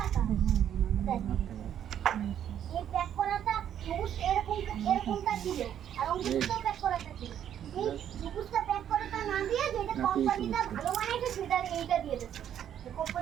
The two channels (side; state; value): left; quieter; 9.9 dB